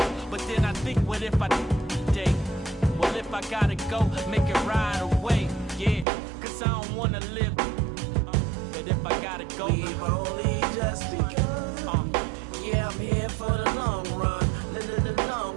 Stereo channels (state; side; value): drops out; left; at 6.1 s